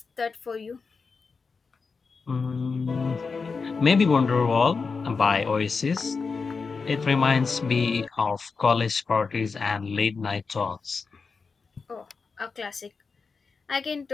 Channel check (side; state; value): right; quieter; 4.8 dB